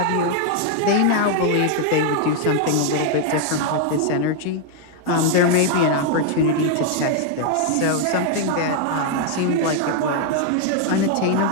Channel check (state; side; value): different; both; correlation 0.00